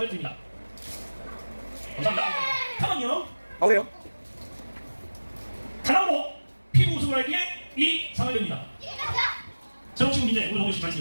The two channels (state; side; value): inverted; both; correlation -1.00